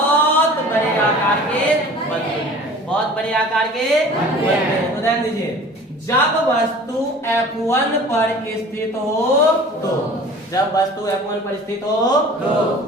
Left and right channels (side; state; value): both; normal; correlation 0.44